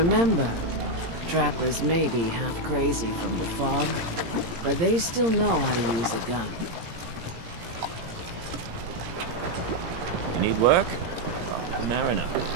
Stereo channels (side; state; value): left; late; 17 ms